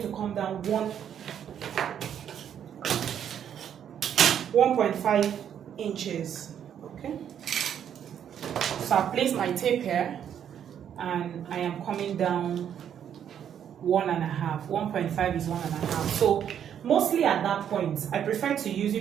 to come down 1.5 inches. Okay, so I place my tape here and I am coming down 1.5. 1.5 is 1.5. So mostly at that point, I prefer to use,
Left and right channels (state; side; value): quieter; left; 9.1 dB